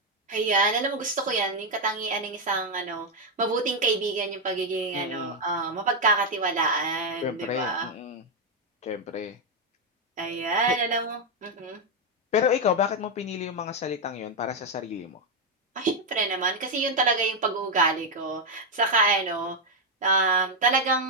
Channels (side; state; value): both; normal; correlation 0.02